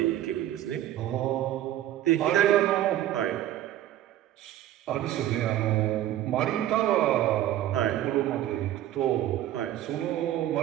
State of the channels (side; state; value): left; quieter; 12.9 dB